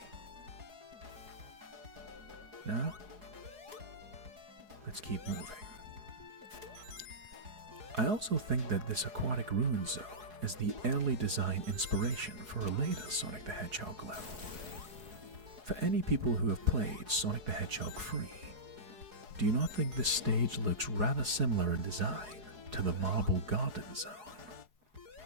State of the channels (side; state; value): left; late; 4.7 ms